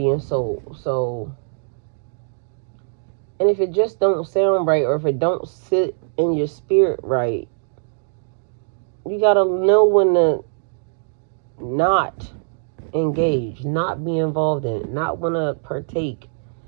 and soul. So, and if it just don't sound right, or if it don't sit in your spirit right, you gotta know when to not engage, not be involved in it, not want to partake,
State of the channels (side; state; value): left; silent; digital silence